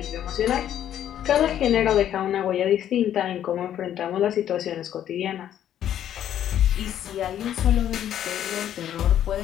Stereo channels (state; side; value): quieter; right; 10.7 dB